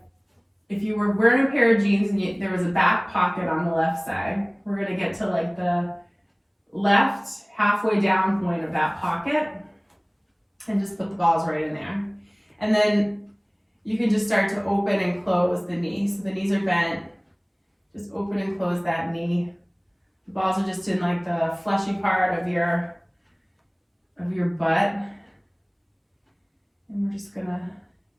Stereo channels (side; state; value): both; identical; correlation 1.00